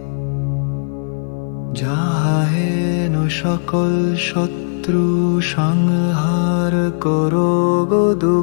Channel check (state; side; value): silent; right; 56 dB below the other